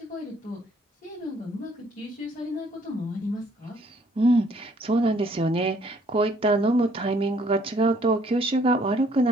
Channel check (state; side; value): normal; both; correlation 0.63